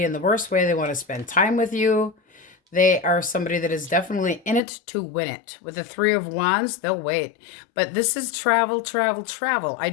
in the worst way. They want to spend time with you. They are somebody that is definitely in it to win it. With the 3 of Wands, they'll wait. But this is travel, travel, travel. I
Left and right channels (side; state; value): right; drops out; at 4.6 s